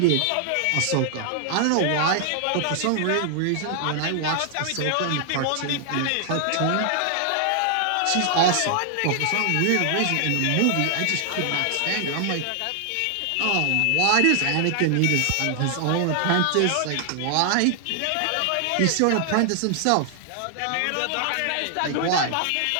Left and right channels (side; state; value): both; different; correlation 0.00